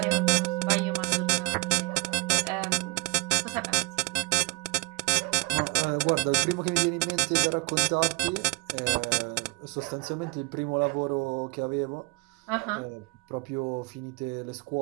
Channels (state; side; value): quieter; left; 28.7 dB